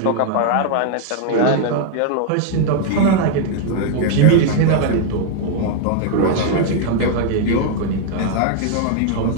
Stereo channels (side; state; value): both; different; correlation 0.00